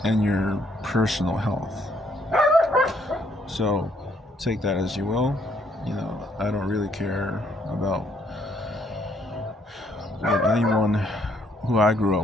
and your personal health. So take that as you will. I don't really care about what anyone who I grew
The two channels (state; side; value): normal; both; correlation 0.68